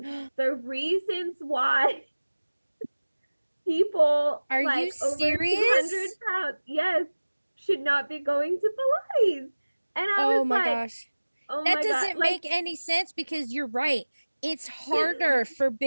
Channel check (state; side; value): inverted; both; correlation -1.00